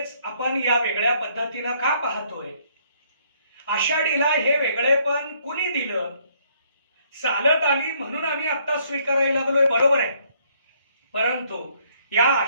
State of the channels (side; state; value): both; inverted; correlation -0.67